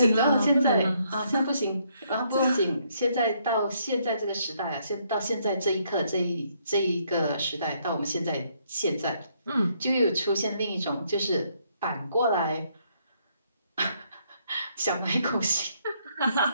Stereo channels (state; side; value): inverted; both; correlation -0.71